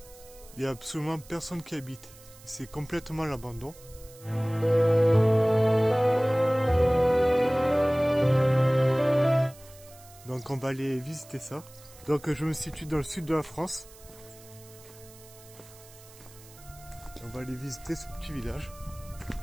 Il n'y a absolument personne qui habite, c'est complètement l'abandon. Donc on va aller visiter ça. Donc je me situe dans le sud de la France. On va aller visiter ce petit village.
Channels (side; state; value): right; noise; hiss, 22 dB below the sound